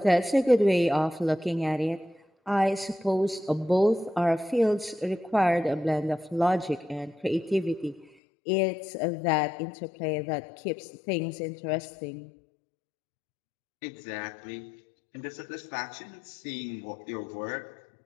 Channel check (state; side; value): drops out; right; at 8.2 s